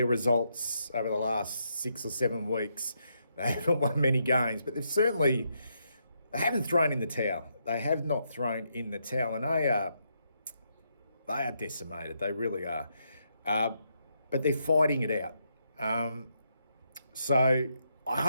results over the last 6 or 7 weeks. They haven't won many games, but they haven't thrown in the towel. They have not thrown in the towel, and they are decimated. They really are. But they're fighting it out. So I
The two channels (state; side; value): inverted; both; correlation -0.79